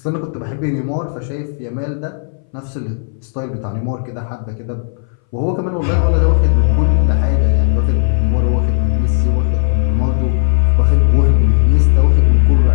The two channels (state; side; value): silent; right; 63 dB below the other